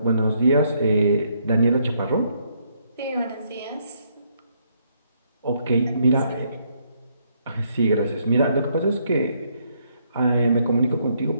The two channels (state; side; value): inverted; both; correlation -0.72